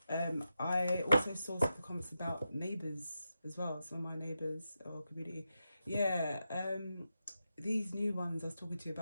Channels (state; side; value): inverted; both; correlation -0.88